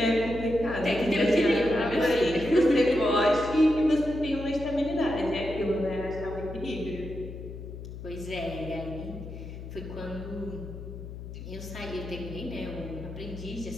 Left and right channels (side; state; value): left; noise; hum, 10 dB below the sound